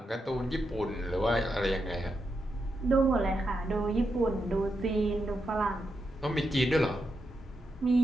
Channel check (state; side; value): normal; both; correlation 0.85